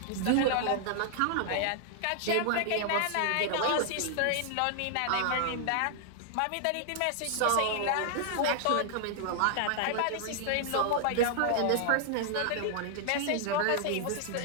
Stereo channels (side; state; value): both; different; correlation 0.00